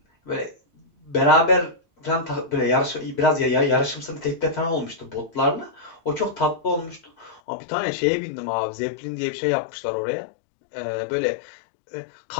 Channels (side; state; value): right; drops out; at 7.4 s